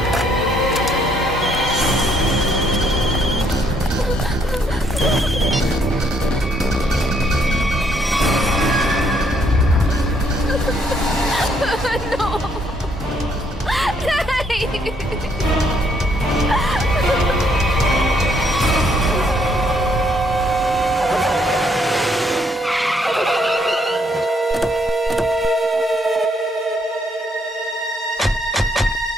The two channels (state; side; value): normal; both; correlation 0.70